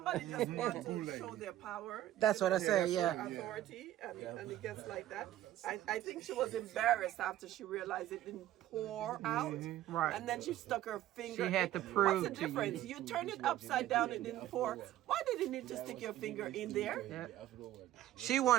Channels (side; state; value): left; quieter; 13.5 dB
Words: just wants to Boule. show their power. That's what I Yeah, said, that's yeah. right. Authority, and it gets like that. I think she was embarrassed after she realized it didn't pour out. Right. And then she stuck her finger. She had to prove What's the to you. difference? You turn it upside down, it didn't pour. Why did you need to stick your finger in there? She